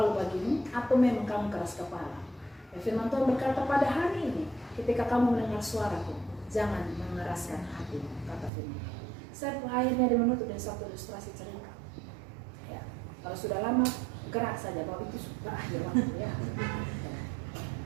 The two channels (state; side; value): drops out; left; at 8.5 s